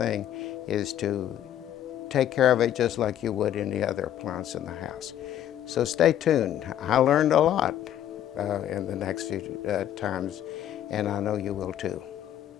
is to take care of it just like you would any other appliance in the house. So stay tuned. I learned a lot in the next few times, and I know you will too.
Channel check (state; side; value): quieter; right; 11.2 dB